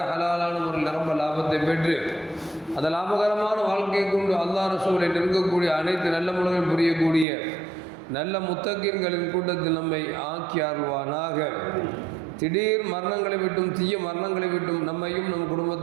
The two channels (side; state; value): left; drops out; at 7.2 s